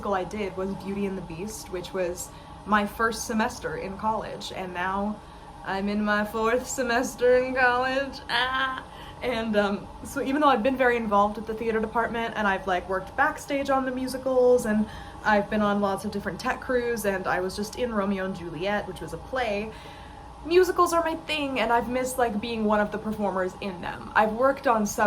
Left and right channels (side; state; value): both; identical; correlation 1.00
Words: I did was Beauty and the Beast, which was my first semester in college, and now I'm in my 4th semester in college. And so even though I've been very involved with the theater department and I've like worked backstage on the musicals and I've been on lots of different tech crews and I was just in Romeo and Juliet, which was a play, musicals are my thing, and I've missed like being one of the performers in them. I've worked on